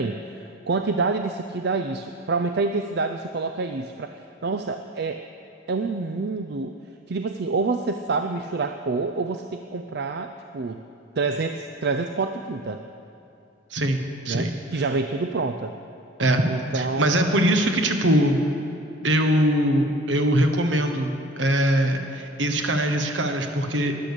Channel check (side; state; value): both; normal; correlation 0.40